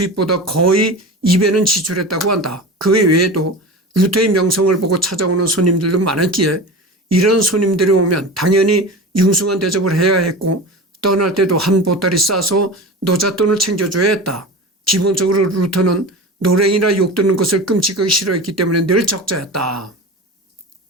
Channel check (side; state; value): both; normal; correlation 0.31